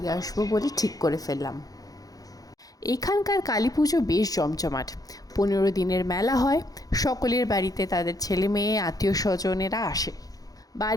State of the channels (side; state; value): right; late; 0.18 ms